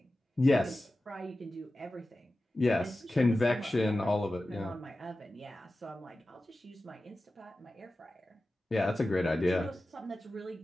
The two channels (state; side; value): normal; both; correlation 0.94